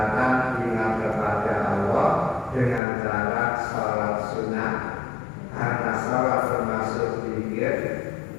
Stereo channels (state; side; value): drops out; right; at 2.8 s